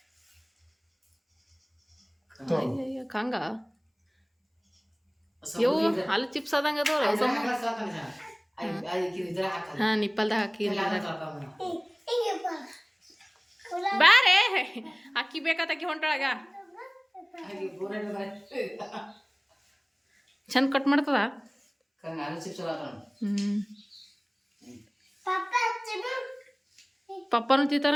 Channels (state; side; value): identical; both; correlation 1.00